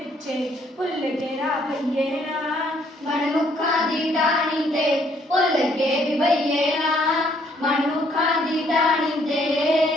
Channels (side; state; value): both; normal; correlation 0.66